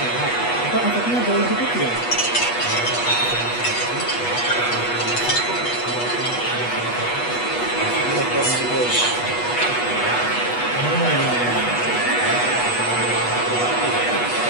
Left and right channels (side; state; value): right; late; 8.3 ms